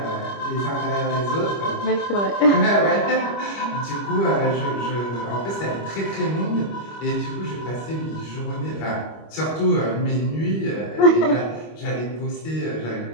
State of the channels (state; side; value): late; right; 25 ms